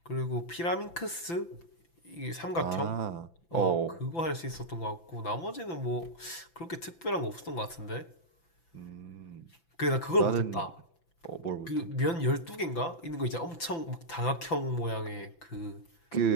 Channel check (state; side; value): late; right; 5.9 ms